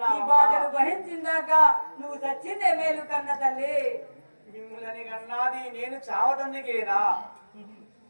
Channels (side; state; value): both; inverted; correlation -1.00